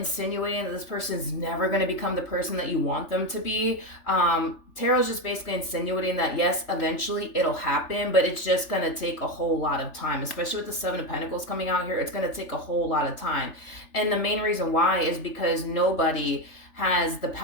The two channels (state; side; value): late; right; 3.4 ms